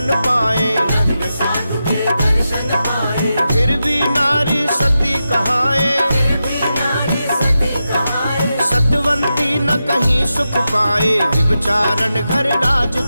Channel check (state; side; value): inverted; both; correlation -0.90